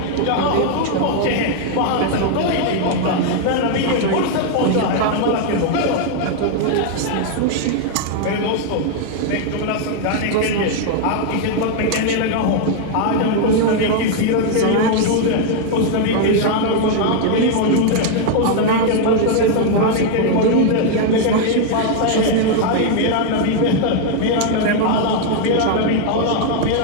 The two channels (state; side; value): different; both; correlation 0.00